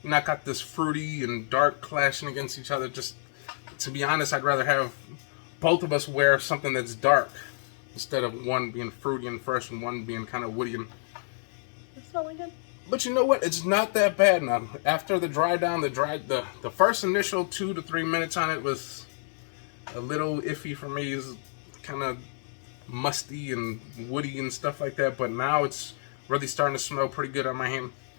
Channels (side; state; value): right; silent; digital silence